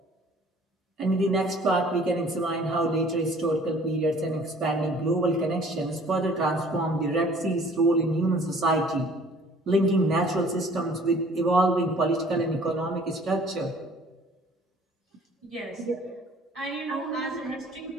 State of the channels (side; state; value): both; normal; correlation 0.53